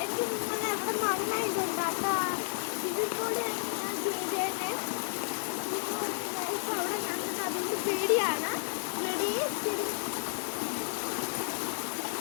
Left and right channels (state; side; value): silent; right; digital silence